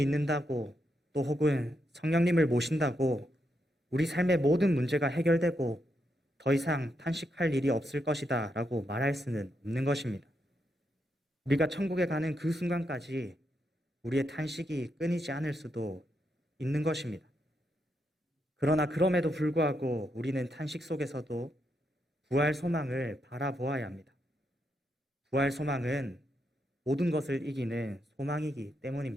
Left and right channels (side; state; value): both; normal; correlation 0.81